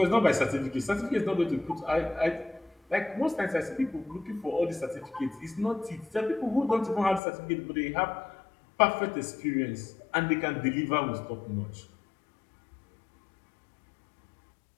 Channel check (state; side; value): drops out; right; at 7.2 s